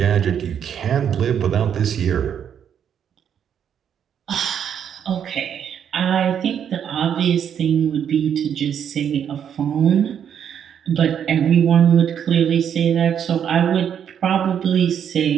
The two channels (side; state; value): left; quieter; 8.6 dB